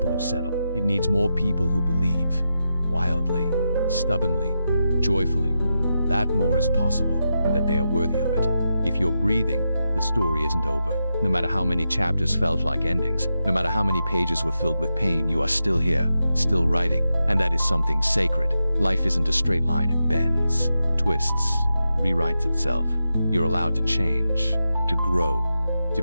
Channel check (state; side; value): inverted; both; correlation -0.88